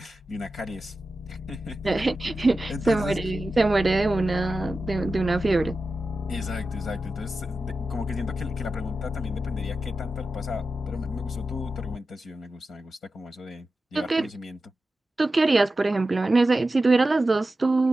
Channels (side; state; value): both; normal; correlation 0.92